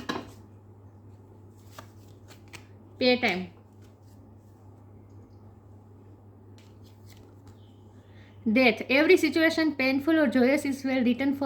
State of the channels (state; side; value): identical; both; correlation 1.00